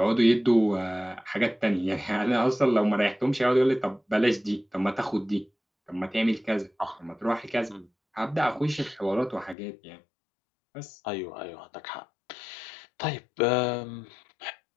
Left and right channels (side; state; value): right; drops out; at 9.6 s